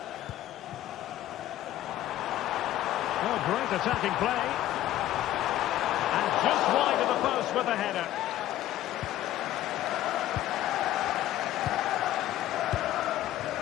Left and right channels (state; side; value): quieter; right; 13.7 dB